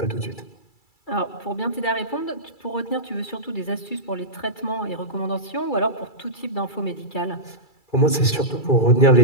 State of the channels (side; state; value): right; late; 2.3 ms